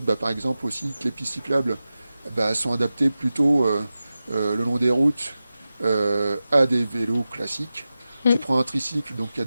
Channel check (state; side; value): inverted; both; correlation -0.94